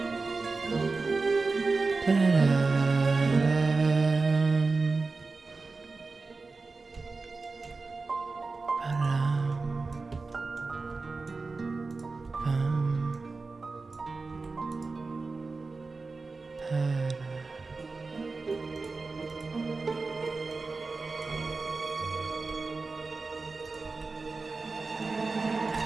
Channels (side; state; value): left; quieter; 3.9 dB